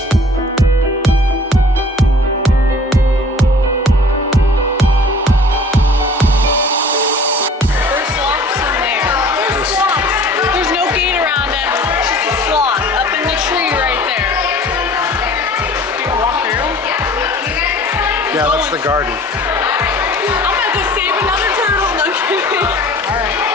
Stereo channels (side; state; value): both; normal; correlation 0.48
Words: Yeah, that's the garden. I'm gonna go save another turtle. No kidding. Alright.